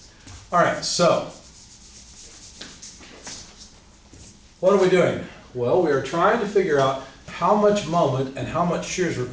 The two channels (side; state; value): both; identical; correlation 1.00